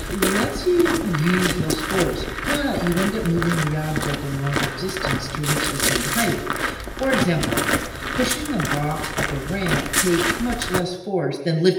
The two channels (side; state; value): both; identical; correlation 1.00